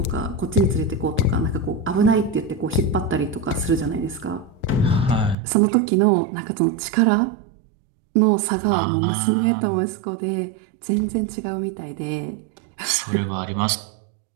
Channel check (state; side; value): drops out; left; at 5.4 s